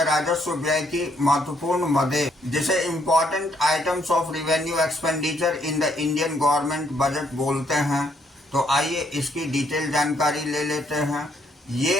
राजस्व व्यय की महत्वपूर्ण मदें, जिसे important items of revenue expenditure in the Indian government budget बोलते हैं। तो आइए इसकी डिटेल जानकारी ले लेते हैं।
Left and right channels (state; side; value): normal; both; correlation 0.70